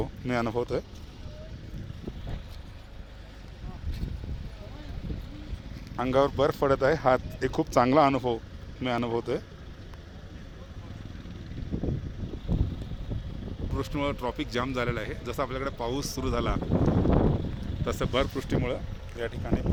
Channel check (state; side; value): identical; both; correlation 1.00